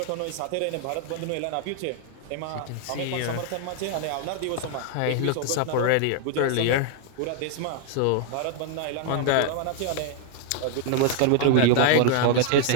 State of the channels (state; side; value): different; both; correlation 0.00